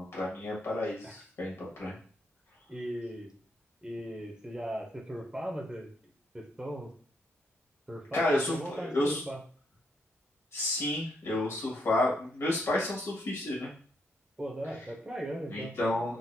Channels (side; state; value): both; normal; correlation 0.77